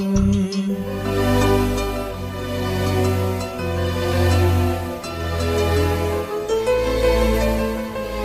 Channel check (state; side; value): identical; both; correlation 1.00